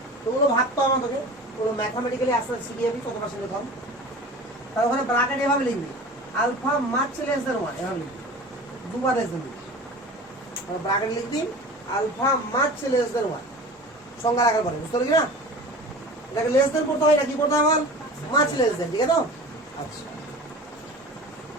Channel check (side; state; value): both; normal; correlation 0.37